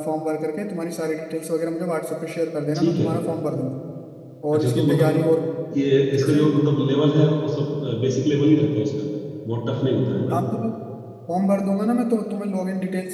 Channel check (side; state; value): both; identical; correlation 1.00